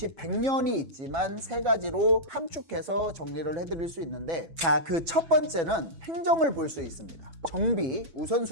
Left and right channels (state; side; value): late; left; 6.0 ms